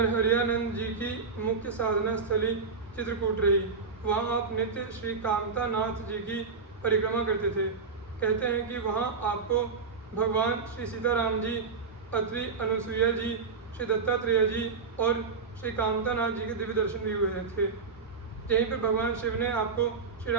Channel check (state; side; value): quieter; left; 4.9 dB